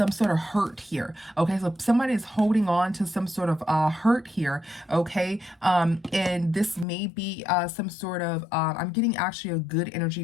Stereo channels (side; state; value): right; drops out; at 6.9 s